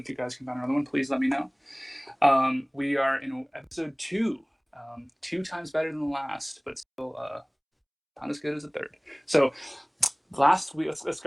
you guys can find another one, please let me know. We are in episode 2, 2 times better than the last, but still not as good as the third. So last week, let's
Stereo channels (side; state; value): both; identical; correlation 1.00